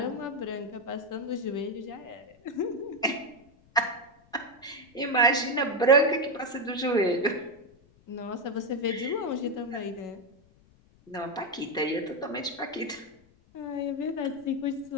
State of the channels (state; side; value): noise; left; rumble, 29 dB below the sound